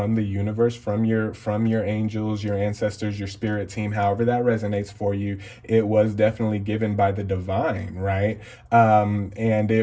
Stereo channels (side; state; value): both; identical; correlation 1.00